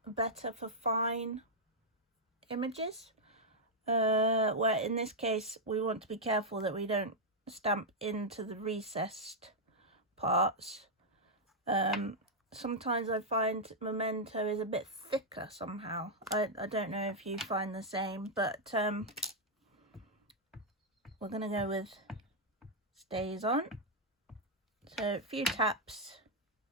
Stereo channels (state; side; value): normal; both; correlation -0.04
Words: better for fine images, where in this case we want to be careful that we don't stamp into the recessed parts. Sometimes I find Memento is a bit thicker somehow. I don't know if you find the same, but we're going to go with Stays On. So a few taps,